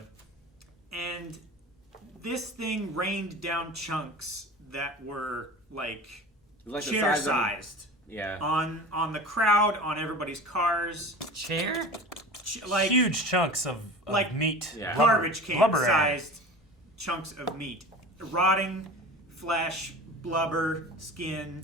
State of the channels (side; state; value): both; normal; correlation 0.36